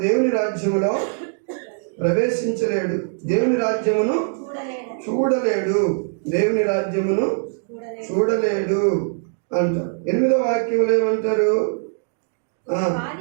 దేవుని రాజ్యములో ప్రవేశించలేడు, దేవుని రాజ్యమును చూడలేడు, దేవుని రాజ్యమును చూడలేడు అంటారు. 8వ వాక్యంలో ఏమంటారు?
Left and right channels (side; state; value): left; silent; digital silence